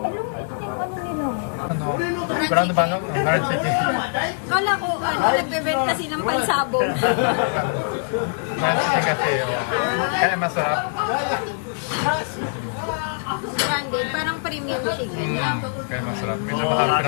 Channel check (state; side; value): silent; right; 60 dB below the other